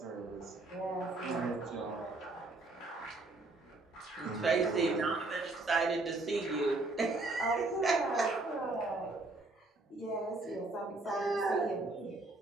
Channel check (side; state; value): left; quieter; 3.1 dB